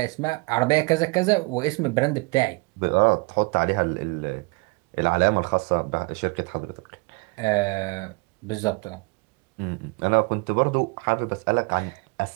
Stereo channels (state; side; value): quieter; left; 28.4 dB